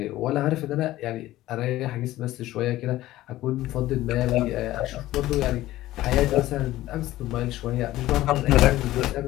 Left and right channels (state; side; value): quieter; right; 15.7 dB